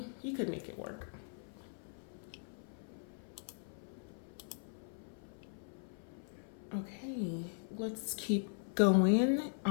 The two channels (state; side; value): silent; right; 51 dB below the other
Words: you could make it work. Okay, let's keep going.